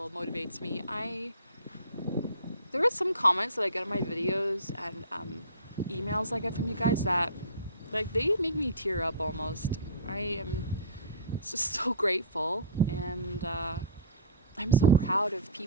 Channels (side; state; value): both; inverted; correlation -0.38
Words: motivates me. There are some comments that I get on my videos and emails I get from you guys that, like, they make me tear up almost. I am just so grateful, and I'm so proud of